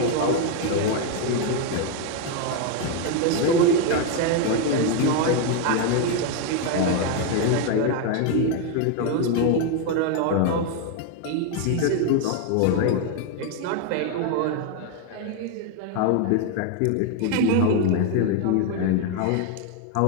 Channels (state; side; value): different; both; correlation 0.01